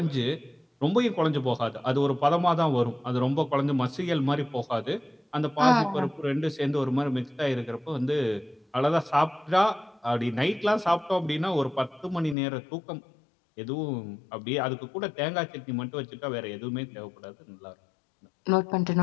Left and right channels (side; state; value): right; drops out; at 12.4 s